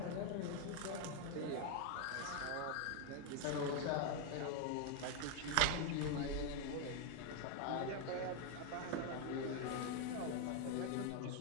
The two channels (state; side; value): different; both; correlation 0.01